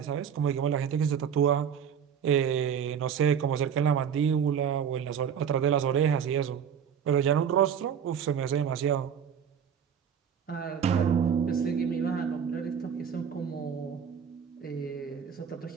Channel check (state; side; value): quieter; left; 7.9 dB